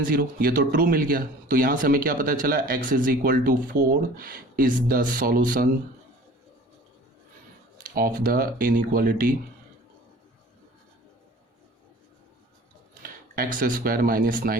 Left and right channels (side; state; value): both; normal; correlation 0.46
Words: 0, ये तो ट्रू मिल गया। तो यहाँ से हमें क्या पता चला, x is equal to 4 is the solution of the inequality x square minus